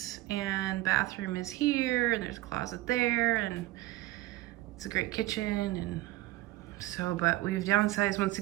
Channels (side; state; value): left; quieter; 17.4 dB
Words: And bathroom is here, and there's a closet there, and it's a great kitchen. And so, but we've downsized once